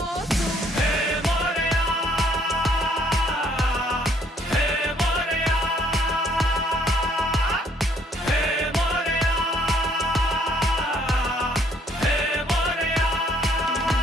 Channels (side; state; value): both; normal; correlation 0.65